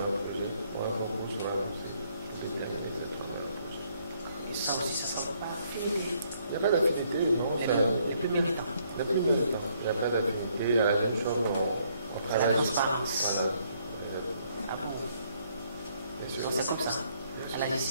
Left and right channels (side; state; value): both; inverted; correlation -0.69